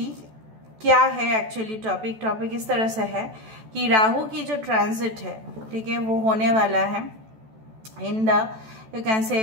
क्या है एक्चुअली टॉपिक इस तरह से है कि राहु की जो ट्रांजिट है, ठीक है, वो होने वाला है इन द यू कैन से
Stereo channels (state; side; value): late; left; 14 ms